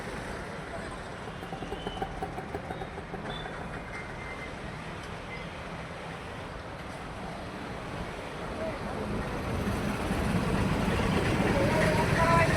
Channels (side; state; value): both; identical; correlation 1.00